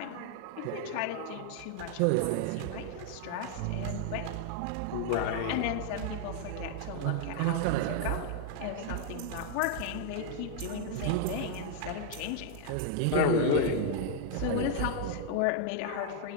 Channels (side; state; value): both; different; correlation 0.00